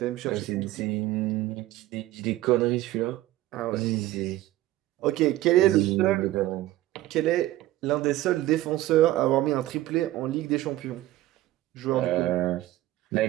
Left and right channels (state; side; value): quieter; left; 15.6 dB